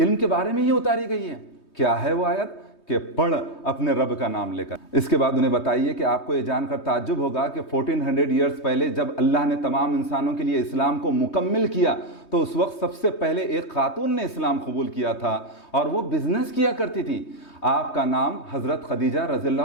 کے بارے میں ہی اتاری گئی ہے۔ کیا ہے وہ آیت؟ کہ پڑھ اپنے رب کا نام لے کر۔ اس کے بعد انہیں بتائیے کہ آپ کو یہ جان کر تعجب ہوگا کہ 1400 ایئرز پہلے جب اللہ نے تمام انسانوں کے لیے اسلام کو مکمل کیا تو اس وقت سب سے پہلے ایک خاتون نے اسلام قبول کیا تھا اور وہ بزنس کیا کرتی تھی۔ آپ کا نام حضرت خدیجہ رضی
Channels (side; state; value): right; late; 3.2 ms